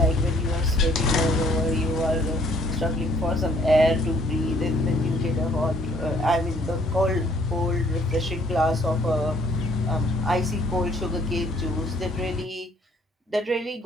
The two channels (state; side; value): normal; both; correlation 0.61